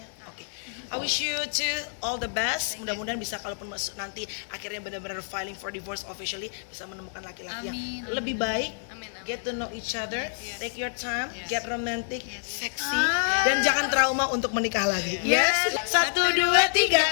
Oke. I wish you to all the best. Mudah-mudahan bisa kalaupun nanti akhirnya benar-benar filing for divorce officially bisa menemukan laki-laki yang Amin. lebih baik. Amin, amin. Get to know each other. Take your time. Get romantic, sexy, Ah. dan jangan trauma untuk menikah lagi. Yes. 1, 2, 3.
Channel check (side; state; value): right; silent; 60 dB below the other